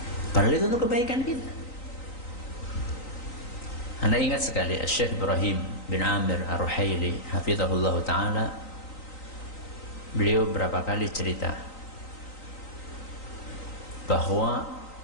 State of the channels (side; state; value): right; late; 3.9 ms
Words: padahal itu untuk kebaikan kita. Anda ingat sekali Syekh Ibrahim bin Amir Ar-Ruhaili hafizahullah ta'ala, beliau berapa kali cerita bahwa